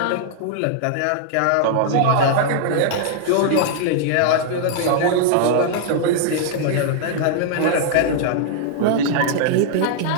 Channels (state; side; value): different; both; correlation -0.01